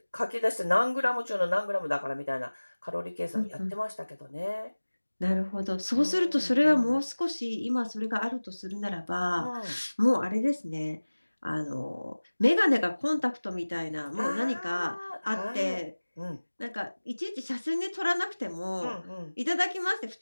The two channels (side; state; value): both; inverted; correlation -1.00